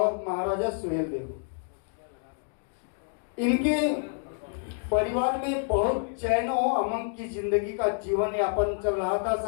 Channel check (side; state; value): right; silent; 59 dB below the other